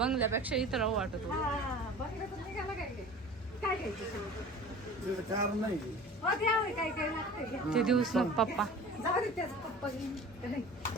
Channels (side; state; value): both; normal; correlation 0.40